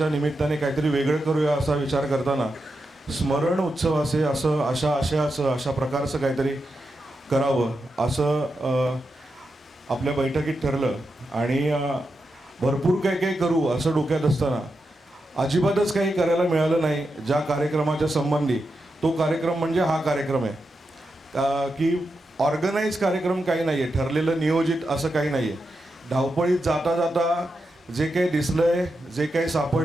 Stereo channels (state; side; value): normal; both; correlation 0.87